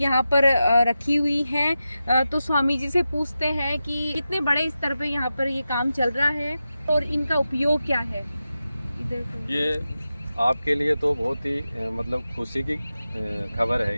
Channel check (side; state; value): both; inverted; correlation -0.92